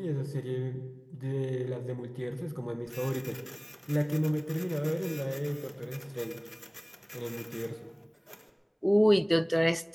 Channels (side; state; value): both; identical; correlation 1.00